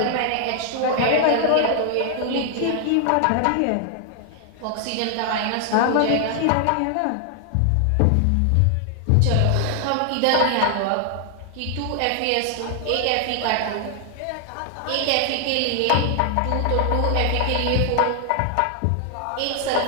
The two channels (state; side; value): different; both; correlation 0.00